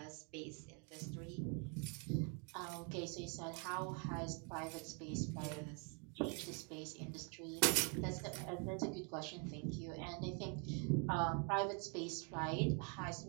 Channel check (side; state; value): left; quieter; 36.2 dB